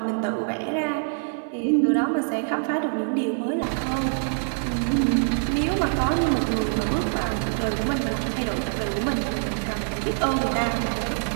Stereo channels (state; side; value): silent; left; digital silence